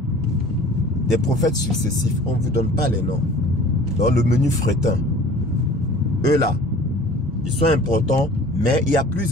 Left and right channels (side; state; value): both; normal; correlation 0.47